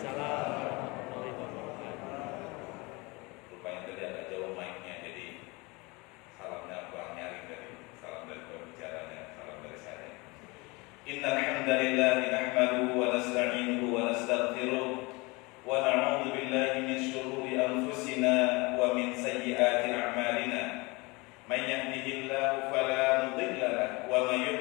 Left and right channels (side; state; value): right; quieter; 25.6 dB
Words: warahmatullahi wabarakatuh. Rupanya tadi agak jauh mic-nya, jadi salamnya kurang nyaring dari salam dari pembicaranya, salam dari saya. Innal hamdalillah nahmaduhu wa nasta'inuhu wa nastaghfiruh wa na'udzu billahi min shururi anfusina wa min sayyiati a'malina. Man yahdihillahu fala mudilla lahu wa man